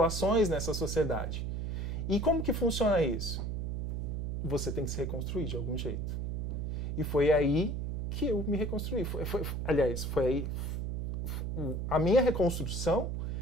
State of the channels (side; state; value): right; noise; hum, 2 dB below the sound